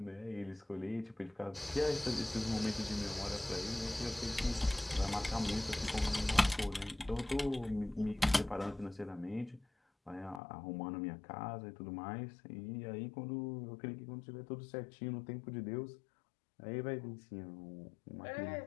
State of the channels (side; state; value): right; drops out; at 10.4 s